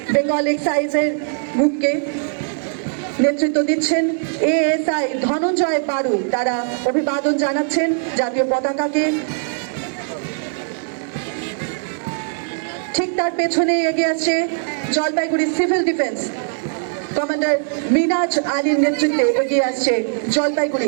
বেঙ্গল এক্সাইজের গ্রুপকে নেতৃত্ব দিচ্ছেন এএসআই ধনঞ্জয় বারু। তারা অভিবাদন জানাচ্ছেন জাতীয় পতাকাকে। ঠিক তার পেছনে এগিয়ে আসছে জলপাইগুড়ি সিভিল ডিফেন্স কমান্ডার মিনাজ আলীর নেতৃত্বে এগিয়ে আসছে জলপাইগুড়ি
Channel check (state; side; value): silent; left; digital silence